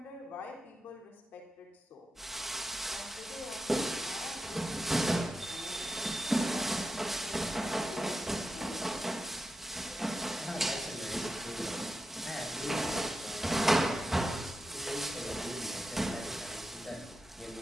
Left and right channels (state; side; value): normal; both; correlation 0.90